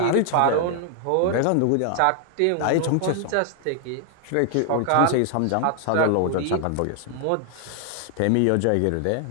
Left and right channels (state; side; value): different; both; correlation 0.00